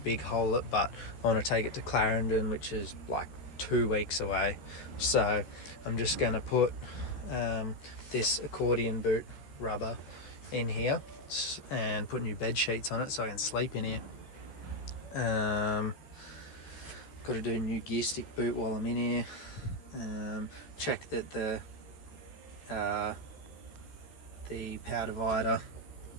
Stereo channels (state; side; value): late; right; 14 ms